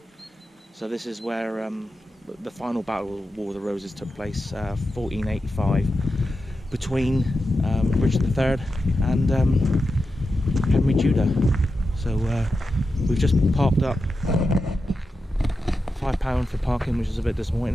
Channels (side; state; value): both; normal; correlation 0.90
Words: So this is where the final battle of War of the Roses took place, 1485, between Richard III and Henry Tudor. So we've just parked up. £5 for parking, which is a bit